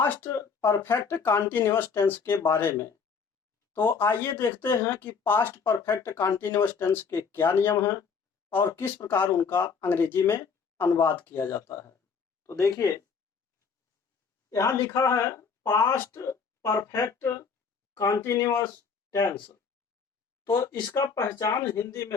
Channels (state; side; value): quieter; right; 5.7 dB